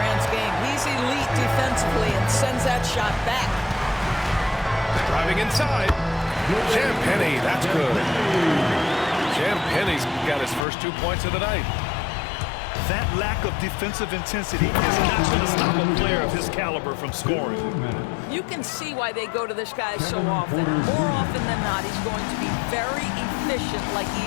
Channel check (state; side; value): drops out; right; at 10.7 s